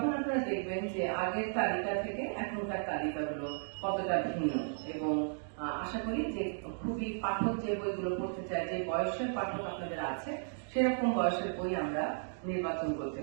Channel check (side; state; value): left; silent; digital silence